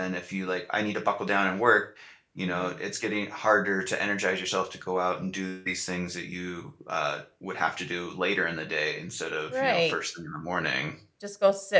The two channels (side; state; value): both; identical; correlation 1.00